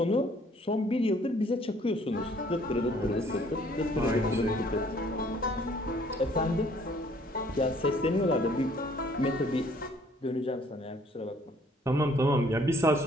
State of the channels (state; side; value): normal; both; correlation 0.60